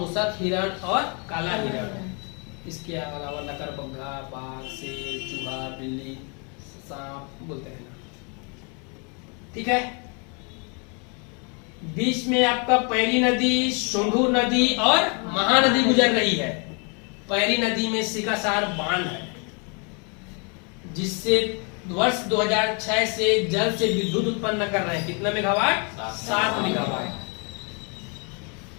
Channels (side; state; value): right; quieter; 35.1 dB